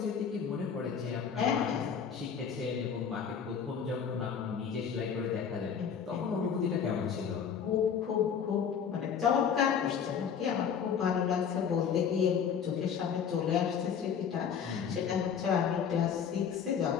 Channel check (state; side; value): quieter; right; 7.3 dB